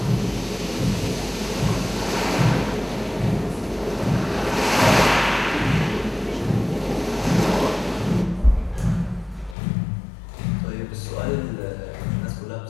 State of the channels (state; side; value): drops out; right; at 9.6 s